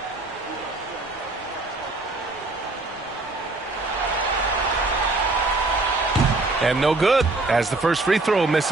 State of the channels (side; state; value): left; quieter; 3.1 dB